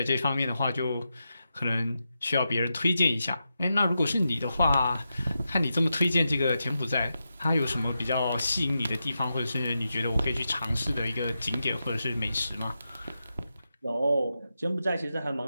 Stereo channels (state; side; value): inverted; both; correlation -0.88